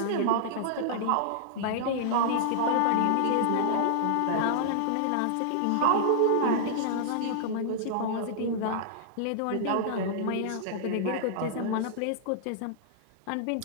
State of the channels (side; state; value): both; different; correlation -0.01